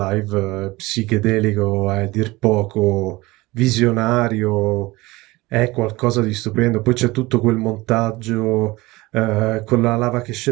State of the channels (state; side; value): quieter; left; 21.1 dB